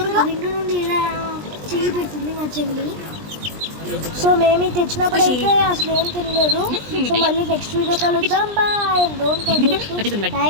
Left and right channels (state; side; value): late; left; 20 ms